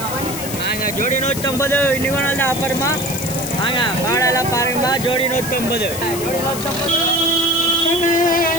நாங்கள் ஜோடி 150 இன்னைக்கு ஒரு நாள் தான் ஆஃபருமா. வாங்க பாடெல்லாம் பாருங்கம்மா. ஜோடி 150, ஜோடி 150,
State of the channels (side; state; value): left; noise; hiss, 8 dB below the sound